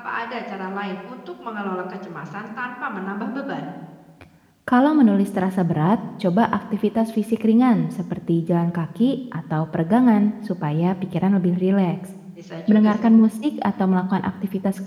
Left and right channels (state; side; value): identical; both; correlation 1.00